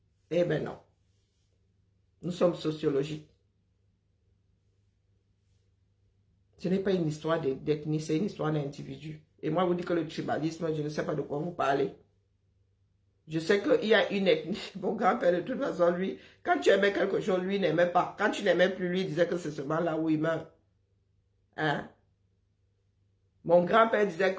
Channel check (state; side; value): identical; both; correlation 1.00